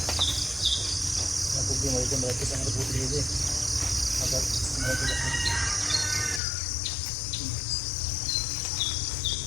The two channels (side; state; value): right; drops out; at 6.4 s